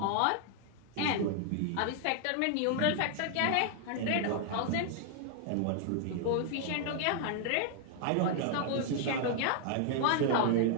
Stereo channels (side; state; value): both; different; correlation 0.00